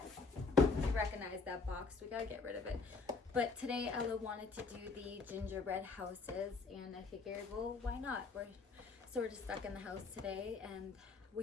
you recognize that box. We gotta get rid of it. But today Ella wanted to do the gingerbread houses, and I figured, well, why not? We're just stuck in the house today, and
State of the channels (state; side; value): quieter; right; 4.5 dB